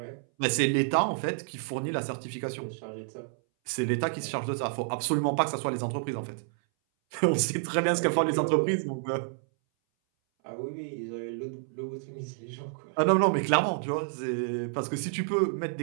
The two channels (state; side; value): silent; left; 58 dB below the other